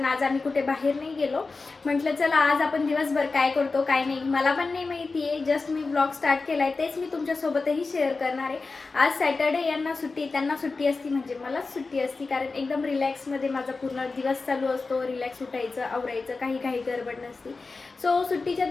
आज आम्ही कुठे बाहेर नाही गेलो. म्हटलं चला आज आपण दिवसभर काय करतो काय नाही मला पण नाही माहिती आहे. जस्ट मी ब्लॉग स्टार्ट केला आहे, तेच मी तुमच्यासोबतही शेअर करणार आहे. आज सॅटर्डे, यांना सुट्टी, त्यांना सुट्टी असती म्हणजे मलाच सुट्टी असती, कारण एकदम रिलॅक्समध्ये माझा पूर्ण दिवस चालू असतो. रिलॅक्स उठायचं, आवरायचं, काही गडबड नसती. सो सुट्टीच्या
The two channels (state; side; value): quieter; right; 4.0 dB